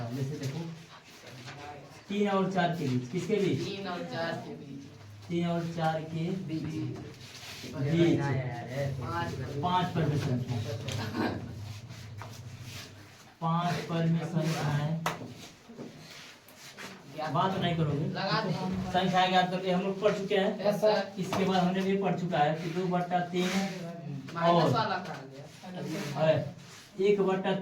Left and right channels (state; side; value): identical; both; correlation 1.00